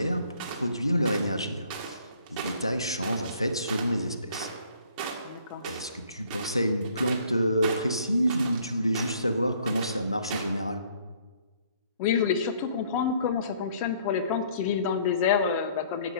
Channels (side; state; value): both; inverted; correlation -0.60